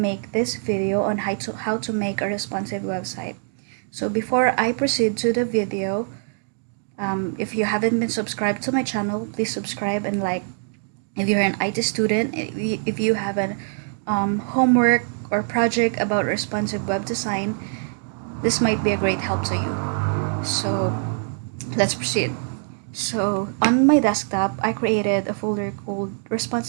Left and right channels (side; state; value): left; silent; digital silence